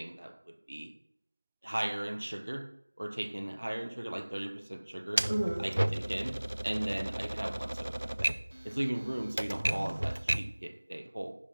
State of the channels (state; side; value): inverted; both; correlation -1.00